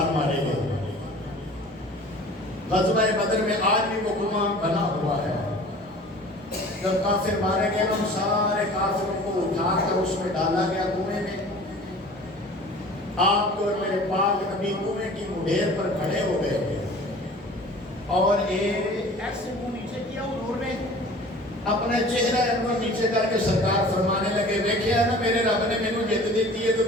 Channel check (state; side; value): normal; both; correlation 0.44